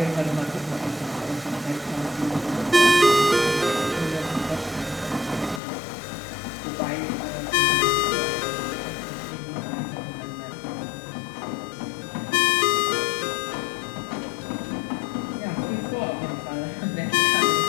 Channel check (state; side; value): drops out; right; at 5.6 s